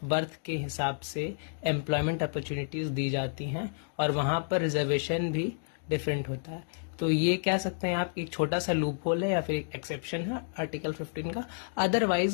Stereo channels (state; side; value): silent; right; digital silence